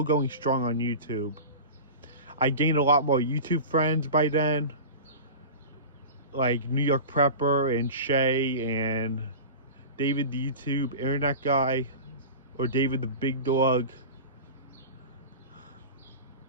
going strong on YouTube. I gained a lot more YouTube friends by then, like New York Prepper and Shay and David the YouTube Internet Guy, or David the Big Dog.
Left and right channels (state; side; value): inverted; both; correlation -0.32